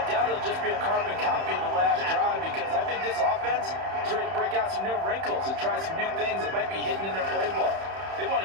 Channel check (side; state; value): left; late; 31 ms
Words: doubt it'll just be a carbon copy of the last drive, because I think this offense is ready to break out some new wrinkles and try some new things that might be hidden in their playbook. They want